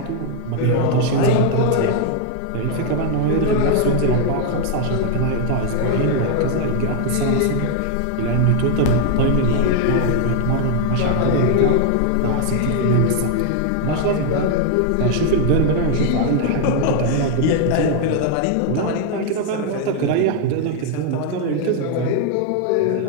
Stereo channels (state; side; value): different; both; correlation 0.00